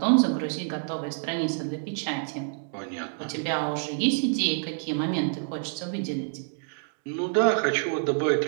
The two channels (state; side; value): silent; left; 60 dB below the other